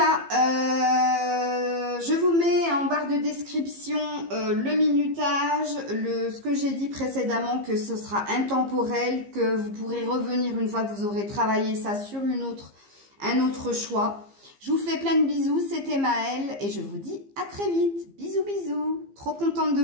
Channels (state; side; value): late; left; 15 ms